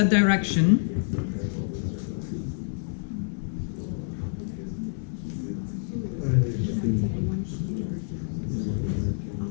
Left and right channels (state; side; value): silent; right; digital silence